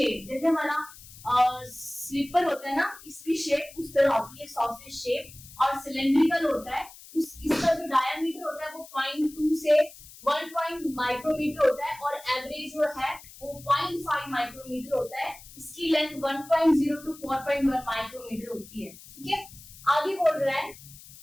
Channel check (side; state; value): left; noise; hiss, 19 dB below the sound